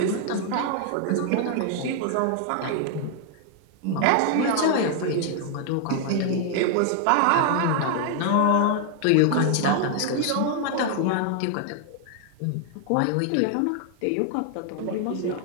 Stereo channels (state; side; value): different; both; correlation 0.00